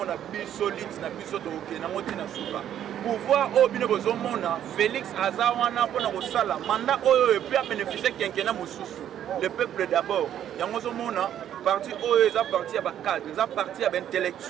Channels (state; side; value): quieter; left; 10.5 dB